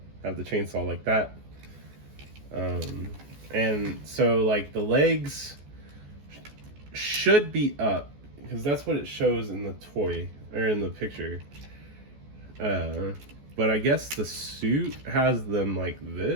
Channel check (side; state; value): left; late; 14 ms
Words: Have the chainsaw like that. And so like the legs should be up because that's what it shows in the toy or in the picture. But I guess the suit has them like